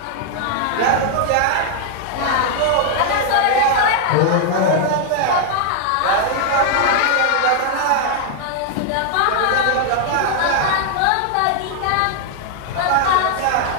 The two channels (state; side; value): different; both; correlation 0.00